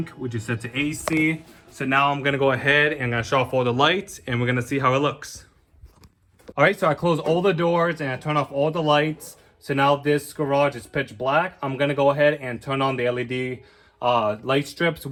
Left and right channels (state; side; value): identical; both; correlation 1.00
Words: which is set to AC. So now I'm gonna go ahead and I'm gonna shut off all the lights, and we're gonna see how it looks. All right, so I closed all the doors and I turned off all the lights. So now this garage is pitch black. I'm gonna go ahead and turn on the LED light strips